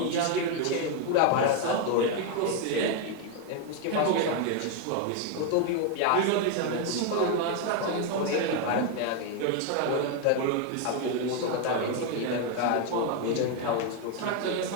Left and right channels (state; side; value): different; both; correlation 0.01